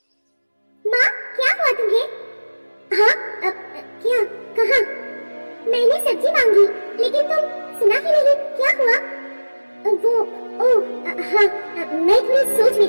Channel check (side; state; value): both; inverted; correlation -1.00